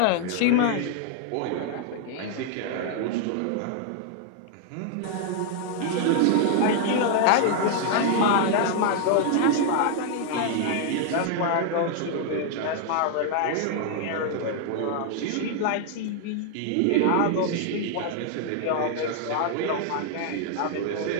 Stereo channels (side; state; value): both; different; correlation 0.00